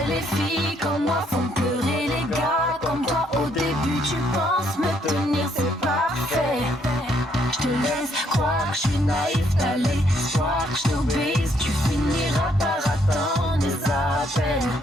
les filles comme moi font pleurer les gars comme toi. Au début, tu penses me tenir, c'est parfait. Je te laisse croire que je suis naïf, t'as l'espoir que je t'obéisse. Tu finiras par attendre des appels.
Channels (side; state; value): both; normal; correlation 0.70